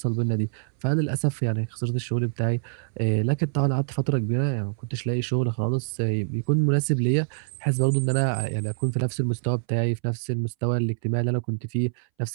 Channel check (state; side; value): silent; left; 61 dB below the other